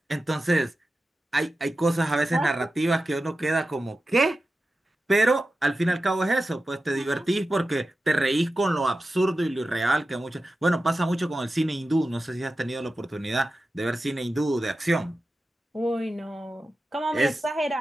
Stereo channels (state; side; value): normal; both; correlation 0.93